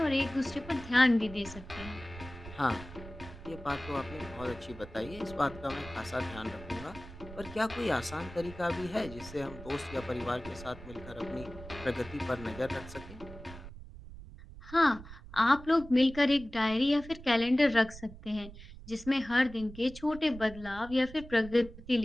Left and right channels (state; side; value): noise; right; rumble, 15 dB below the sound